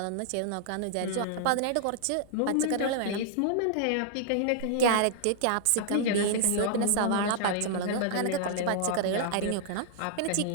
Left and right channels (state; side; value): different; both; correlation -0.01